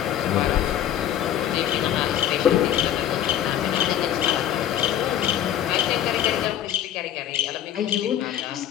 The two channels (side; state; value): right; quieter; 11.0 dB